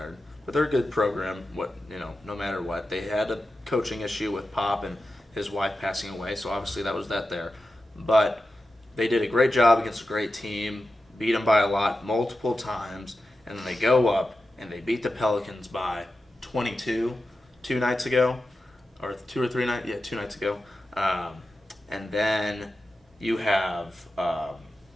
but they're a good program. No matter what. They had a coaching issue with Pop and his wife passing away, so obviously that was that there. But they did a great job against a great team, beat them by a lot multiple times, and then they go up and they beat the Pelicans by 22 2 nights ago, or 2 or 3 nights. Yeah, 2 nights ago. And then you have.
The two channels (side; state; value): both; normal; correlation 0.92